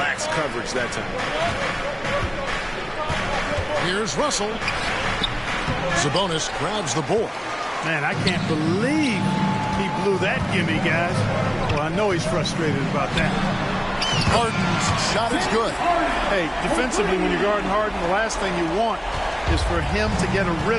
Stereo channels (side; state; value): both; identical; correlation 1.00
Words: coverage that time. Here's Russell. Sabonis grabs the board. Man, I can't believe he blew that gimme, guys. Well, I know he's frustrated about that. Harden's shot is good. Hey, defensively, when you're guarding Harden, the last thing you want is for him to get a